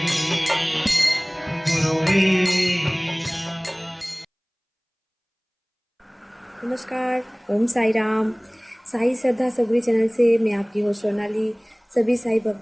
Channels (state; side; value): identical; both; correlation 1.00